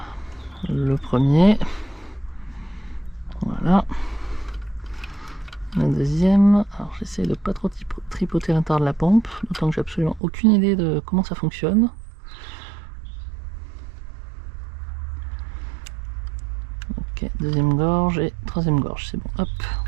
Le premier. Voilà. Le deuxième. Alors j'essaie de pas trop tripoter l'intérieur de la pompe. D'autant que j'ai absolument aucune idée de comment ça fonctionne. Ok, deuxième gorge et troisième gorge, c'est bon, hop.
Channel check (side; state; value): left; drops out; at 10.2 s